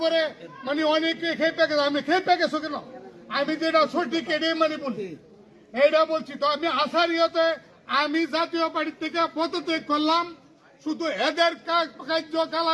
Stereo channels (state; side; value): identical; both; correlation 1.00